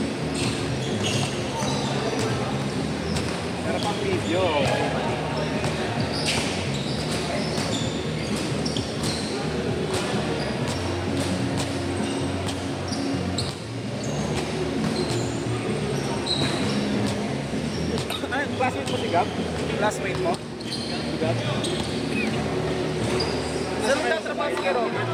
Pero pang video. Ay, classmate mo si Gab? Classmate mo? Si Gab? Saan nagtatrabaho si Kero?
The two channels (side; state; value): both; identical; correlation 1.00